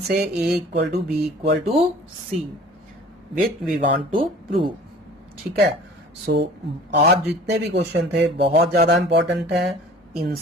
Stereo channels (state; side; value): normal; both; correlation 0.46